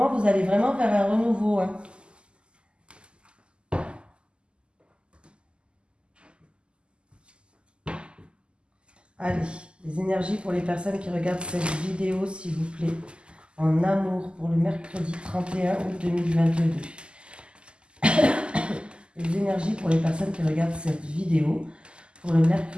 vous allez vraiment vers un renouveau. Hein. Allez, les énergies pour les personnes qui regardent cette vidéo, s'il vous plaît. En amour pour le mercredi 31 août 2022. Les énergies pour les personnes qui regardent cette vidéo pour le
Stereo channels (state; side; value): late; left; 0.050 ms